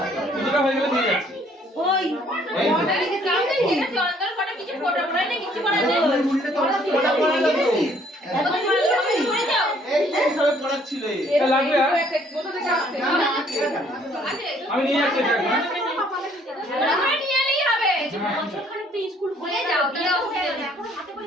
কিছুটা হয়ে গেলে দিয়ে যাচ্ছি ওই কিছু ফটো পড়াই না কিছু করা যায় এটা লাগবে আর আমি নিয়ে যাচ্ছি এটা নিয়ে এলেই হবে বছরখানেক তো স্কুল খুলে যাও তাহলে এখন হাতে করে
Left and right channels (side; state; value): both; normal; correlation 0.62